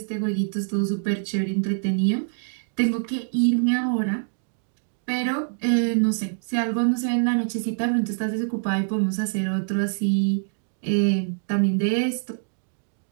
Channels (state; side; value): silent; left; digital silence